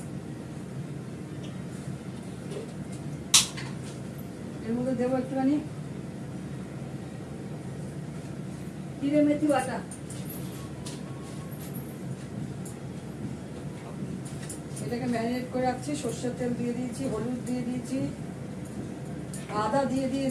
এর মধ্যে দেবো একটুখানি জিরে মেথি বাটা, এটাকে ম্যারিনেট করে রাখছি। সর্ষের তেল দিয়ে দিয়েছি, হলুদ দিয়ে দিয়েছি, আদা দিয়ে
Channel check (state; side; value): identical; both; correlation 1.00